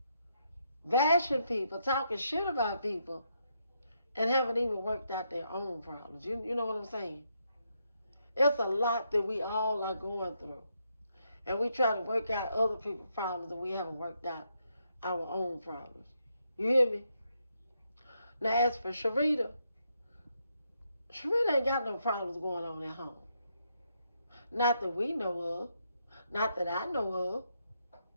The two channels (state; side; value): inverted; both; correlation -0.79